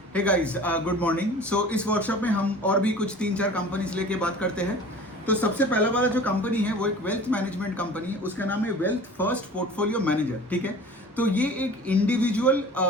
हे guys, good morning. So इस workshop में हम और भी कुछ 3-4 कंपनीज लेके बात करते हैं। तो सबसे पहला वाला जो कंपनी है वो एक वेल्थ मैनेजमेंट कंपनी है, उसका नाम है वेल्थ फर्स्ट पोर्टफोलियो मैनेजर। ठीक है, तो ये एक इंडिविजुअल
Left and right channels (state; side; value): normal; both; correlation 0.42